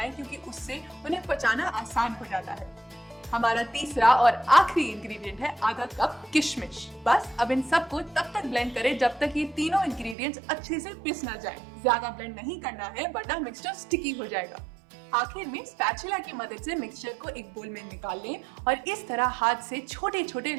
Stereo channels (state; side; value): drops out; left; at 10.2 s